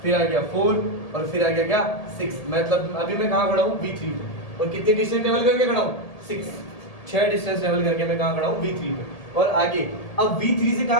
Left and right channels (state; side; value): late; right; 1.8 ms